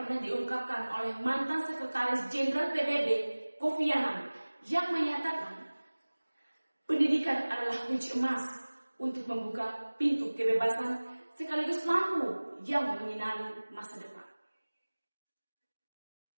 diungkapkan oleh mantan Sekretaris Jenderal PBB, Kofi Annan, yang menyatakan pendidikan adalah kunci emas untuk membuka pintu kebebasan sekaligus lampu yang menyinari masa depan.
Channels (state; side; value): inverted; both; correlation -1.00